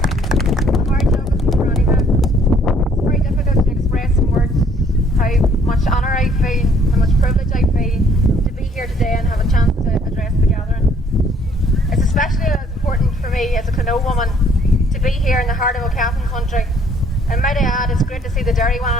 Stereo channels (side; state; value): both; normal; correlation 0.61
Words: And might I add, it's great to see the dairy